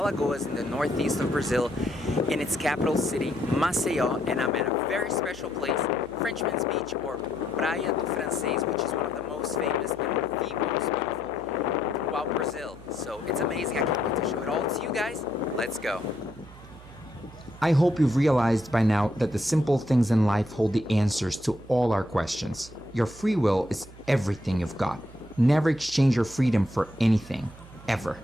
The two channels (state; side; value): noise; right; hum, 19 dB below the sound